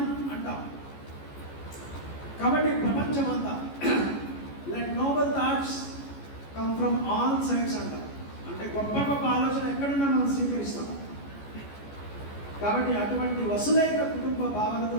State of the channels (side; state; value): right; late; 14 ms